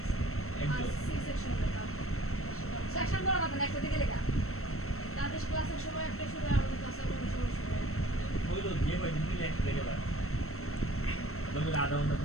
একদম সেকশন বড় কথা না একটা দিকে লেখা তাদের ক্লাসের সময় একটা সময় আমাদের ক্লাসের কোনো সময় হইলো যে হয় তুমি এক থেকে বার তবে আধা ঘন্টা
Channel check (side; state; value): right; late; 0.63 ms